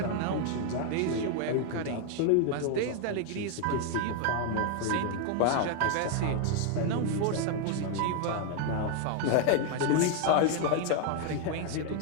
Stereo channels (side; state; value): both; different; correlation 0.00